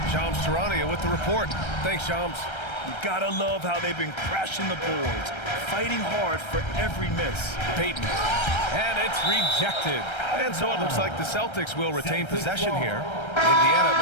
Shams Charania with the report. Thanks, Shams. You gotta love how they've been crashing the boards, fighting hard for every miss. Payton. And it's rejected. And so it looks like the Celtics will retain possession here. Indiana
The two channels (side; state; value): right; late; 1.3 ms